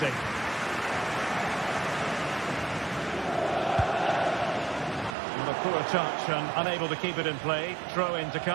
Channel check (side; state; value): left; drops out; at 5.2 s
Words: A poor touch and unable to keep it in play. Throw in to